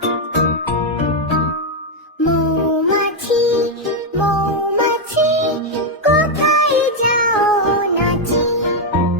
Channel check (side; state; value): both; normal; correlation 0.02